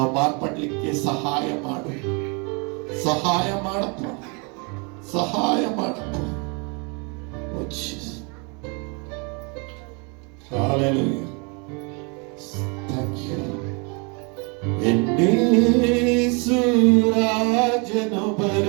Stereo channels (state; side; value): quieter; left; 33.1 dB